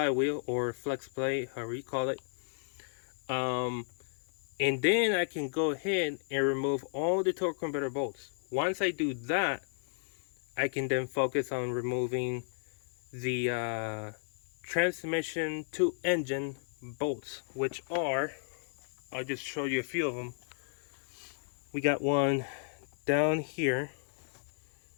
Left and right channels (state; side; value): silent; right; 55 dB below the other